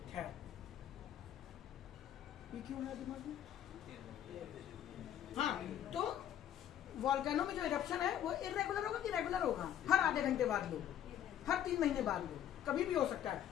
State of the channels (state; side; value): quieter; right; 10.6 dB